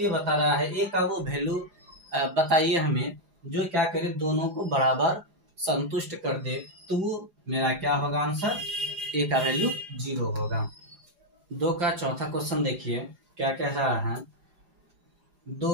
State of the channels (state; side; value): late; left; 4.9 ms